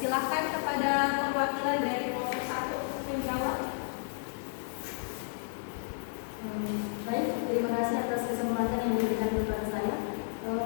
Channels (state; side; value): silent; right; digital silence